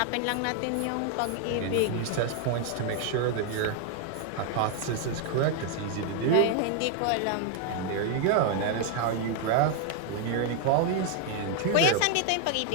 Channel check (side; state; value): both; different; correlation 0.00